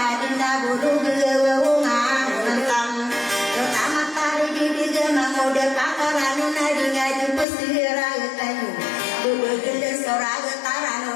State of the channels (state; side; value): drops out; right; at 7.5 s